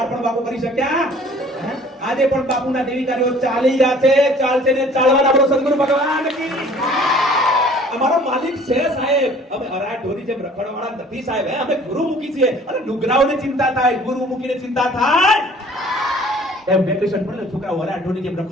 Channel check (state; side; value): normal; both; correlation 0.52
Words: પણ બાપુ કરી શક્યા? આજે પણ બાપુના દેવીકારીઓ ચાલી રહ્યા છે, ચાલશે ને ચાલવાના આપણો સદગુરુ ભગવાન કી અમારો માલિક છે સાહેબ। અમે અરા ઢોરી જેમ રખડવાળા નથી સાહેબ, અમે ગુરુમુખી છીએ। અને નુગરાઓને ચિંતા થાય, ગુરુમુખીને ચિંતા થાય? એમ વેકેશન પડે છોકરાઓ અરા ઢોરી જેમ